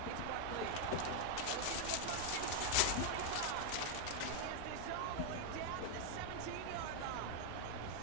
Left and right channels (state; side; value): different; both; correlation 0.00